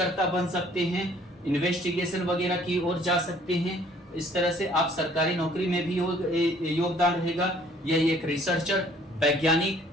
बन सकते हैं, इन्वेस्टिगेशन वगैरह की ओर जा सकते हैं। इस तरह से आप सरकारी नौकरी में भी योगदान रहेगा। यह एक रिसर्चर, वैज्ञानिक,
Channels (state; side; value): normal; both; correlation 0.58